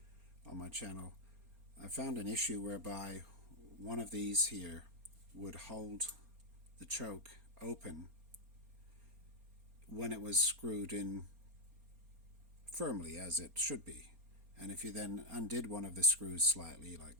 on my channel, I found an issue whereby one of these here would hold the choke open when it was screwed in firmly, as it should be. And if you then undid one of the screws slightly, like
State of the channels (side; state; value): left; late; 4.3 ms